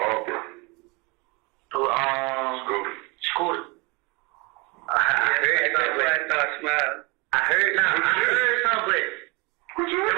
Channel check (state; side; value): quieter; left; 27.8 dB